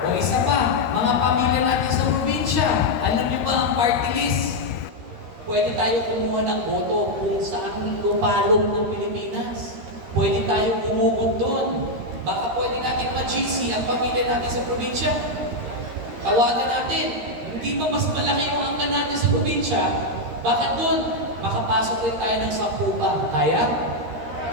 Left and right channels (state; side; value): late; left; 13 ms